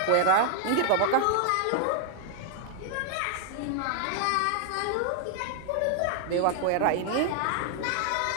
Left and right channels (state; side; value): different; both; correlation 0.00